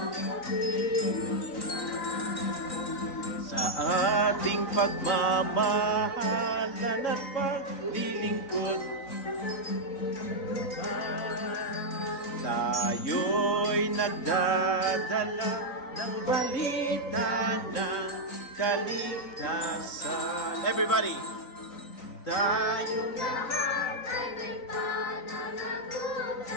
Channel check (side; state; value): right; late; 3.9 ms